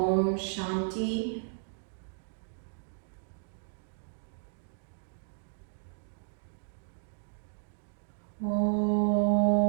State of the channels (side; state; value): left; silent; digital silence